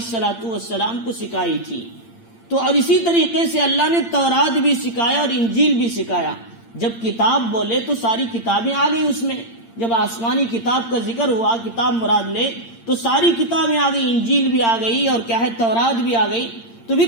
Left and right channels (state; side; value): late; right; 8.7 ms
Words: السلام کو سکھائی تھی۔ تو اور اسی طریقے سے اللہ نے تورات بھی سکھایا اور انجیل بھی سکھایا۔ جب کتاب بولے تو ساری کتابیں آ گئی اس میں، جب آسمانی کتاب کا ذکر ہوا، کتاب مراد لے تو ساری کتابیں آ گئی، انجیل بھی آ گئی اور کیا ہے تورات بھی آ گئی۔ تو